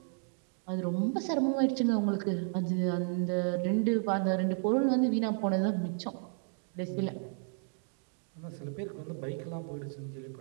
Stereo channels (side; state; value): left; silent; 56 dB below the other